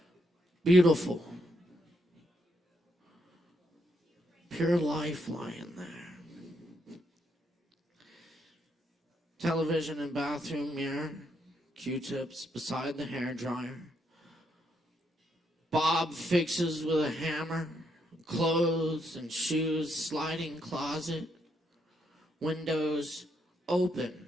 Beautiful. Pure life lying there. Television and bathroom mirror. Q-tips beside the hairdryer. Bob fixes with a hammer. Clothes and shoes. Sliding closet. Windows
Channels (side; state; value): both; normal; correlation 0.76